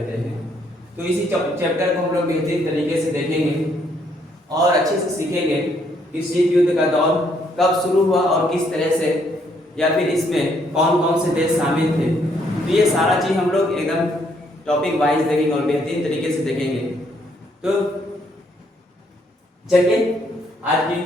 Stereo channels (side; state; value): both; normal; correlation 0.70